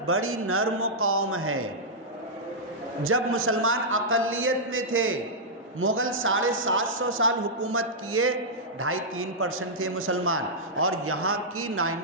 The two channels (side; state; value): both; normal; correlation -0.09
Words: بڑی نرم قوم ہے۔ جب مسلمان اقلیت میں تھے، مغل 750 سال حکومت کیے، 2.5-3% تھے مسلمان، اور یہاں کی